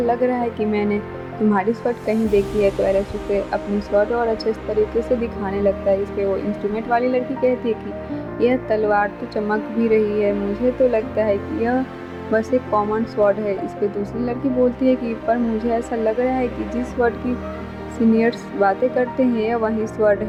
रहा है कि मैंने तुम्हारी स्वॉर्ड कहीं देखी है। तो एलेक्स उसे अपनी स्वॉर्ड और अच्छे तरीके से दिखाने लगता है। इस पे वो इंस्ट्रूमेंट वाली लड़की कहती है कि यह तलवार तो चमक भी रही है, मुझे तो लगता है कि यह बस एक कॉमन स्वॉर्ड है। इस पे दूसरी लड़की बोलती है कि पर मुझे ऐसा लग रहा है कि जिस स्वॉर्ड की सीनियर्स बातें करते हैं यह वही स्वॉर्ड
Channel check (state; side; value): identical; both; correlation 1.00